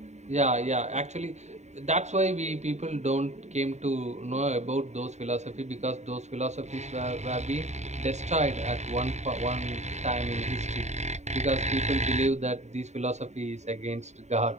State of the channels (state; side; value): late; left; 0.33 ms